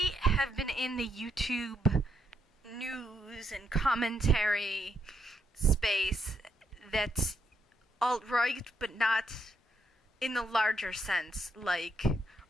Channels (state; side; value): normal; both; correlation 0.77